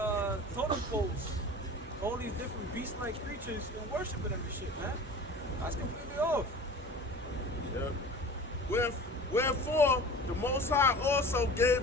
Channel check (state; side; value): normal; both; correlation 0.39